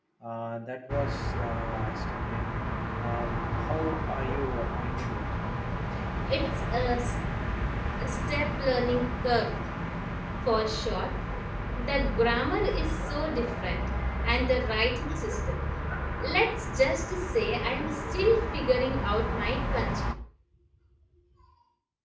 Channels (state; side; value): identical; both; correlation 1.00